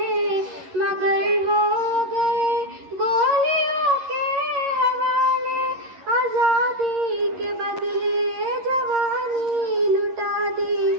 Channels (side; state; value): left; late; 11 ms